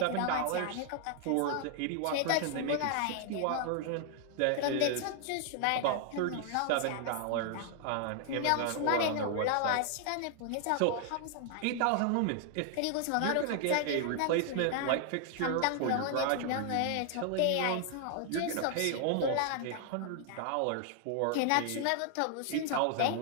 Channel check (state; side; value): different; both; correlation 0.00